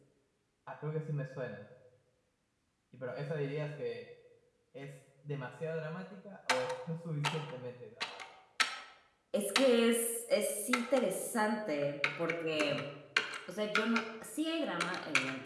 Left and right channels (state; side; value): identical; both; correlation 1.00